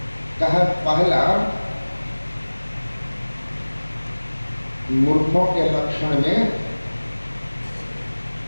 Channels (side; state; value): both; inverted; correlation -1.00